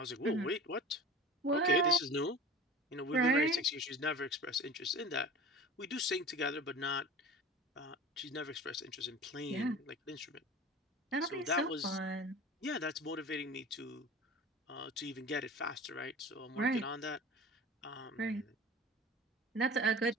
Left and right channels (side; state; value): both; normal; correlation 0.37